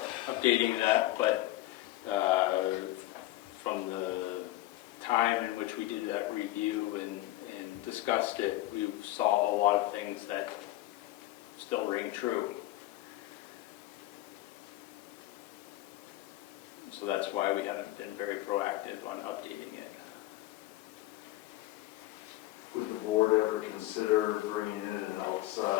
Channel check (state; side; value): quieter; right; 16.4 dB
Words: updating that, but from the time in which we did that review and discussed it, we saw a lot of things that still ring true. So that's why we haven't been very proactive on updating it. Would the board ever consider bringing in an